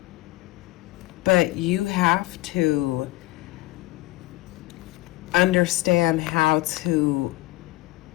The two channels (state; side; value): quieter; right; 18.5 dB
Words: But you have to understand how to